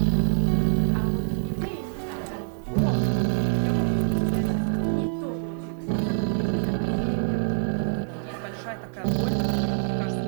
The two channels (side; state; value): left; silent; digital silence